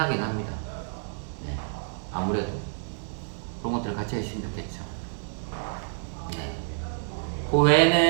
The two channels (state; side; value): silent; left; 57 dB below the other